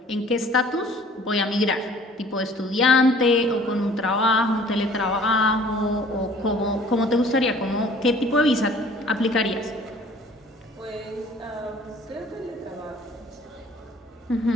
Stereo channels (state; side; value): normal; both; correlation 0.52